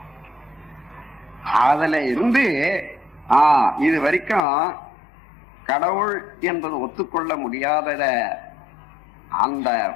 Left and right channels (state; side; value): drops out; right; at 4.5 s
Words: அதுல இருந்து இது வரைக்கும் கடவுள் என்பது ஒத்துக்கொள்ள முடியாதத அந்த